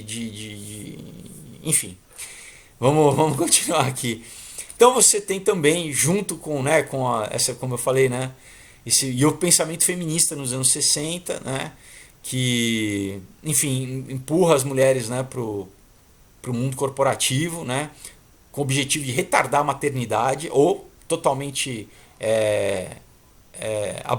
enfim, vamos continuar aqui. Então você tem também, junto com, né, essa, como eu falei, né, e o pensamento feminista nos anos 60, né, que, enfim, empurra as mulheres, né, para o mundo corporativo, né, com o objetivo de retardar a maternidade ou totalmente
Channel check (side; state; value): both; identical; correlation 1.00